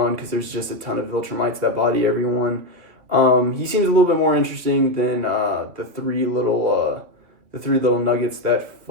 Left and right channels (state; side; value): late; left; 3.0 ms